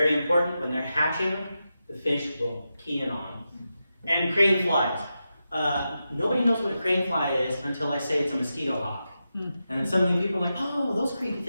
important. When they're hatching, the fish will key in on them. And crane flies. Nobody knows what a crane fly is until I say it's a mosquito hawk. And then suddenly people are like, oh, those creepy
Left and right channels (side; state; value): both; inverted; correlation -0.89